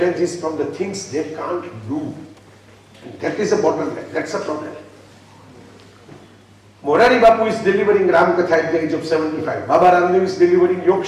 from the things they can't do. And that is a bottleneck. That's a problem. Morari Bapu is delivering Ram Katha at the age of 75. Baba Ramdev is delivering Yog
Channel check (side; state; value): both; identical; correlation 1.00